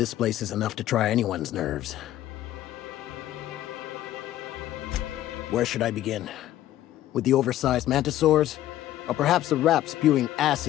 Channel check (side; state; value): right; quieter; 13.5 dB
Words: place is enough to try anyone's nerves. Where should I begin? With the oversized mantisaurs? Or perhaps the rats spewing